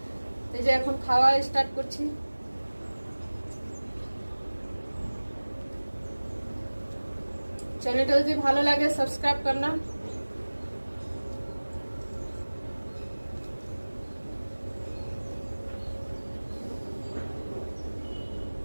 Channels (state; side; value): inverted; both; correlation -1.00